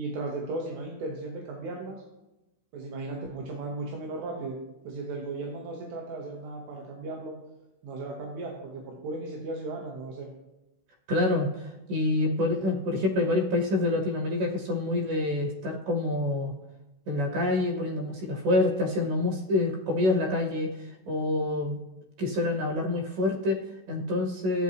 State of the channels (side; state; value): left; late; 16 ms